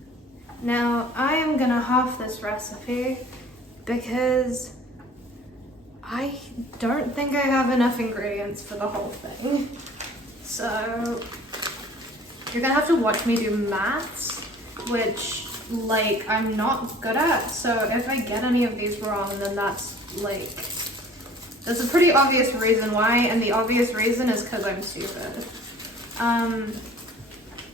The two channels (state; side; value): normal; both; correlation 0.49